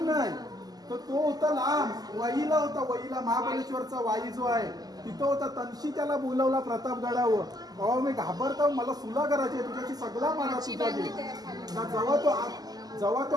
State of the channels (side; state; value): left; late; 0.19 ms